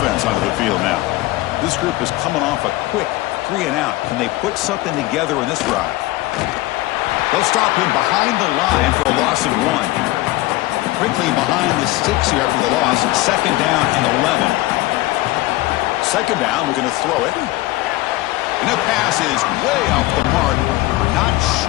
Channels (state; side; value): quieter; right; 18.6 dB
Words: onto the field now. This group is coming off a quick 3 and out. Can they put something together in this drive? They'll stop him behind the line for a loss of 1. Quickly behind the 6 here after the loss. Second down and 11. Second down, we're going to throw it. And the pass is way off the mark. Not